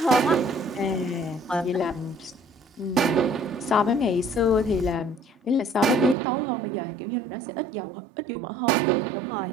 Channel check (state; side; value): drops out; left; at 6.2 s